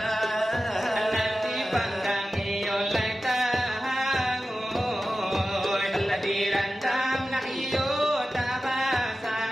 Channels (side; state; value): both; normal; correlation 0.94